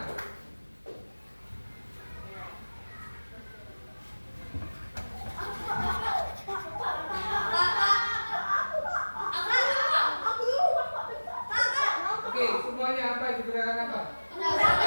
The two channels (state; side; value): inverted; both; correlation -1.00